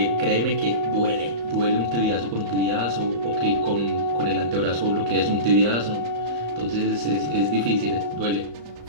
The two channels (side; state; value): left; late; 34 ms